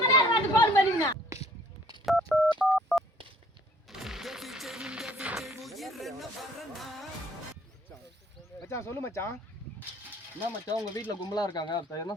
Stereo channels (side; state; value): both; normal; correlation 0.58